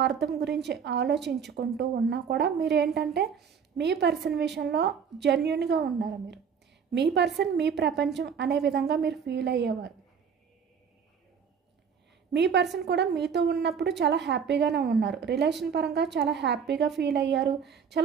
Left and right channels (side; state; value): left; quieter; 6.8 dB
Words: గురించి ఆలోచించుకుంటూ ఉన్నా కూడా మీరు ఏంటంటే మీ పర్సన్ విషయంలో జెన్యూన్గా ఉన్నారు. మీరు మీ పర్సన్ మీ ప్రపంచం అనే విధంగా మీరు ఫీల్ అయ్యేవారు. మీ పర్సన్ కూడా మీతో ఉన్నప్పుడు చాలా హ్యాపీగానే ఉన్నారు, రిలేషన్ పరంగా చాలా హ్యాపీగా ఫీల్ అయ్యారు,